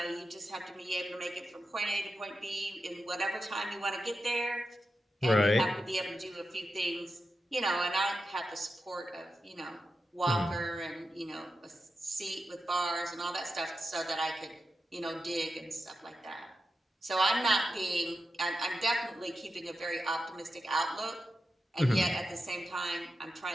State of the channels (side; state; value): both; normal; correlation 0.89